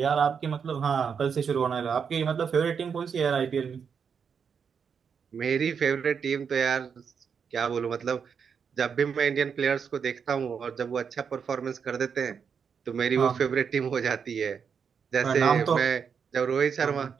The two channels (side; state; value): left; quieter; 6.6 dB